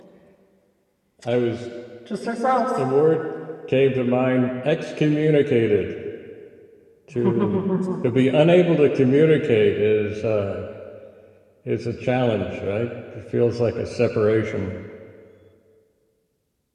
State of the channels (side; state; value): both; identical; correlation 1.00